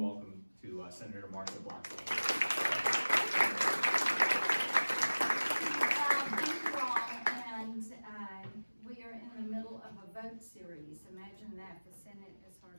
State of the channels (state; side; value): inverted; both; correlation -1.00